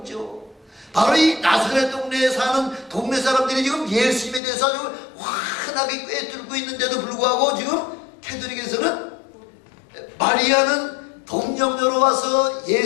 바로 이 나사렛 동네에 사는 동네 사람들이 지금 예수님에 대해서 아주 환하게 꿰뚫고 있는데도 불구하고 지금 캐톨릭에서는 마리아는 동정녀로 와서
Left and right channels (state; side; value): drops out; right; at 4.4 s